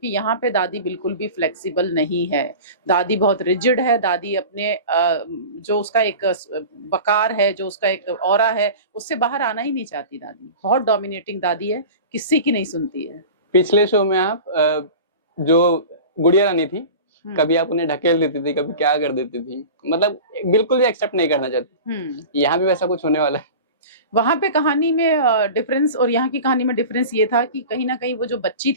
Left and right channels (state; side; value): inverted; both; correlation -0.35